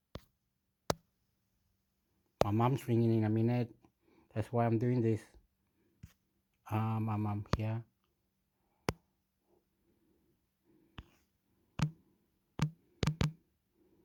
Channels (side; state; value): both; identical; correlation 1.00